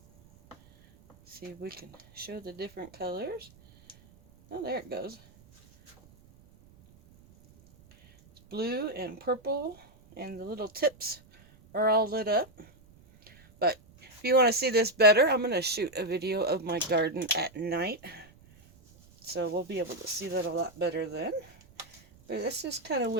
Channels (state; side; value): noise; right; rumble, 26 dB below the sound